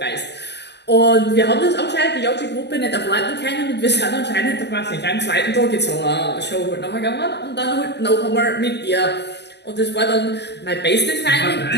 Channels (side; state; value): right; late; 0.50 ms